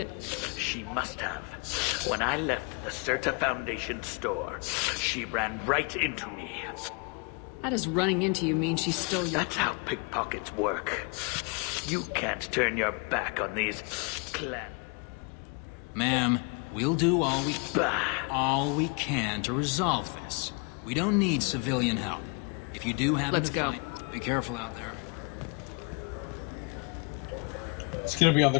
She must have. When I left the Serta Foundation store, she ran right into me. How does running into you mean she stole your... That's how pickpockets work. You can't turn your back on these clan... Ma'am, we'll do all we can to resolve this. We don't need civilian help. If you do happen Let's to go. find... Be careful out there. It's gonna be on the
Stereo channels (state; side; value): quieter; right; 34.0 dB